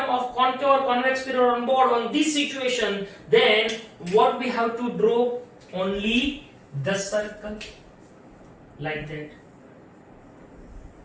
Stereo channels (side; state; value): both; identical; correlation 1.00